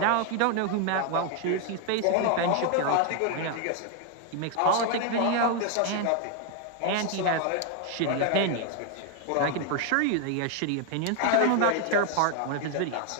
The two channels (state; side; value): different; both; correlation 0.01